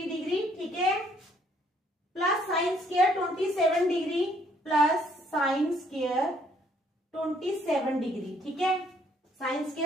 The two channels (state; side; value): normal; both; correlation 0.66